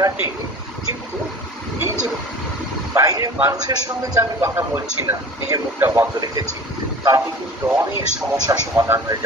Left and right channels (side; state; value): both; normal; correlation 0.40